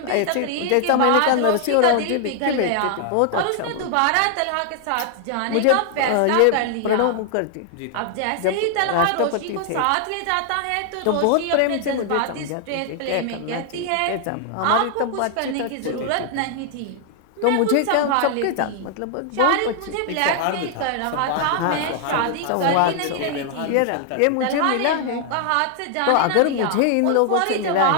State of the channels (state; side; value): different; both; correlation 0.00